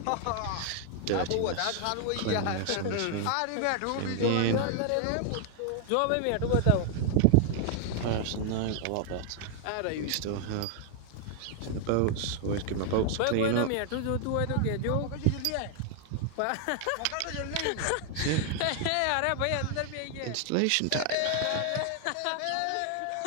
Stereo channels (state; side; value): different; both; correlation 0.00